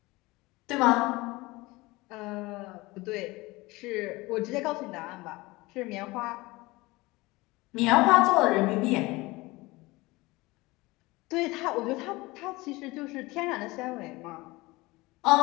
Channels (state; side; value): quieter; right; 21.7 dB